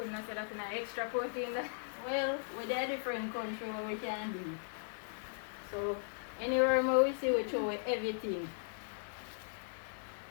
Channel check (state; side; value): silent; right; 53 dB below the other